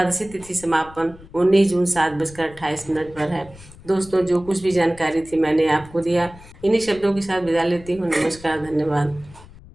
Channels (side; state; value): left; noise; rumble, 20 dB below the sound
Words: तिथि समापन 19 जून 7:28 पर है। दोस्तों, जो कुछ भी जानकारी थी मैंने आपको दिया। इन्हीं शब्दों के साथ विदा लेती हूँ। नमस्कार, धन्यवाद।